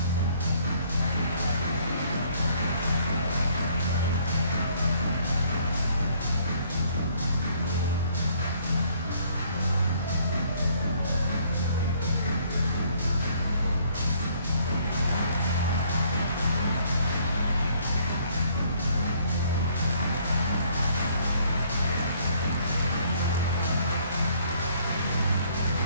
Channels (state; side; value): inverted; both; correlation -0.63